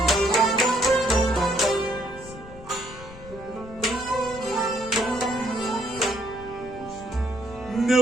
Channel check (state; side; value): noise; left; rumble, 17 dB below the sound